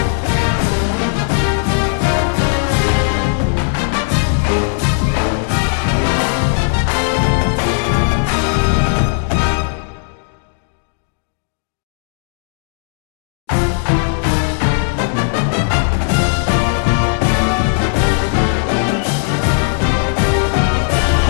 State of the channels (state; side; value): silent; right; digital silence